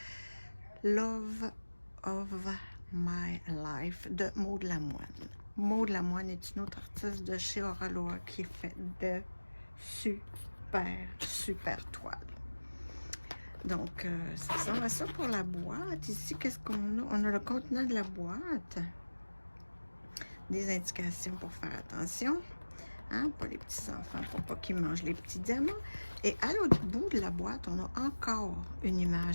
Love of My Life de Maud Lamoine. Maud Lamoine est une autre artiste de chez Auraloa qui fait de super toiles. Donc, ça ressemble à ça pour la boîte. Ici, qu'est-ce qu'on a? On a le contenant de la boîte. Des indications pour faire attention. Hein, pour les petits-enfants, pour pas qu'ils mangent les petits diamants. Et à l'autre bout de la boîte, on a encore une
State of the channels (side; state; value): both; inverted; correlation -1.00